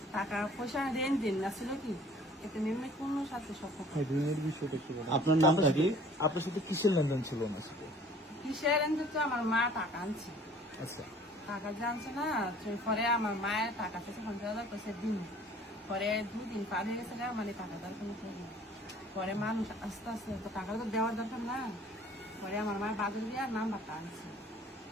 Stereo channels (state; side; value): normal; both; correlation 0.52